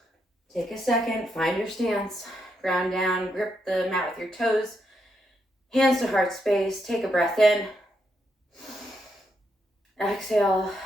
Take a second, find your stance. Ground down, grip the mat with your toes. Hands to heart space, take a breath in. Exhale,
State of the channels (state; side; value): normal; both; correlation 0.80